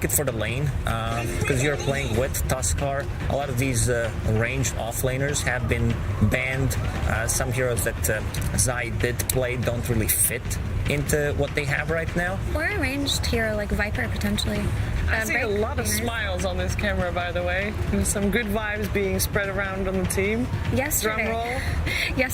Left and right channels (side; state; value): both; identical; correlation 1.00